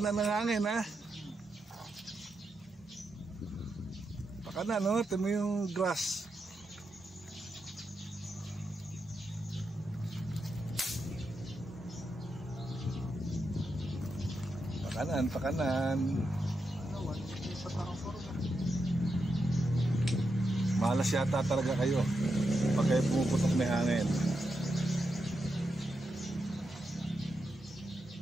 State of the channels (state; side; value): normal; both; correlation 0.85